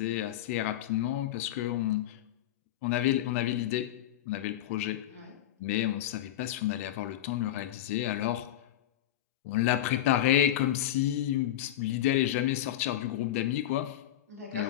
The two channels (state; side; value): quieter; right; 12.8 dB